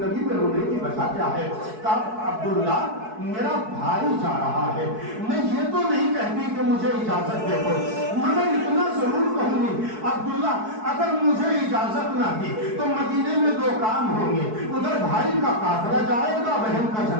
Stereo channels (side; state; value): left; late; 4.6 ms